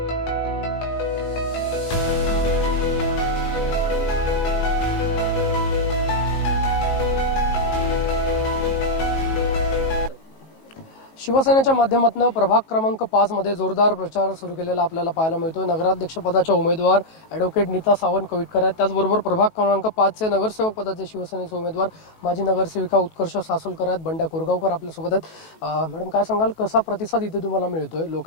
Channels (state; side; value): late; right; 19 ms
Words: शिवसेनेच्या माध्यमातून प्रभाग क्रमांक 5 मध्ये जोरदार प्रचार सुरू केलेला आपल्याला पाहायला मिळतोय. नगराध्यक्षपदाच्या उमेदवार ॲडव्होकेट नीता सावंत कविटकर आहेत. त्याचबरोबर प्रभाग क्रमांक 5 चे नगरसेवक पदाचे शिवसेनेचे उमेदवार माजी नगरसेविका उत्कर्ष सासोलकर आहेत. बंड्या कोरगावकर आपल्यासोबत आहेत. मॅडम काय सांगाल, कसा प्रतिसाद इथे तुम्हाला मिळतोय?